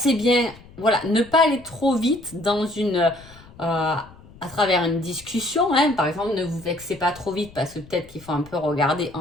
bien. Voilà, ne pas aller trop vite dans à travers une discussion. Par exemple, ne vous vexez pas trop vite parce que peut-être qu'il faut un peu regarder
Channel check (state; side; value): noise; left; rumble, 22 dB below the sound